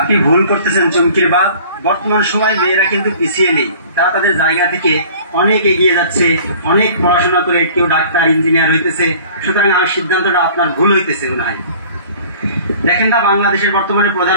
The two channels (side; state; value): both; inverted; correlation -0.47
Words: ভুল করতেছেন চুমকির বাপ, বর্তমান সময় মেয়েরা কিন্তু পিছিয়ে নেই, তারা তাদের জায়গা থেকে অনেক এগিয়ে যাচ্ছে, অনেক পড়াশোনা করে কেউ ডাক্তার ইঞ্জিনিয়ার হইতেছে, সুতরাং আমার সিদ্ধান্তটা আপনার ভুল হইতেছে মনে হয়। দেখেন না বাংলাদেশের বর্তমানে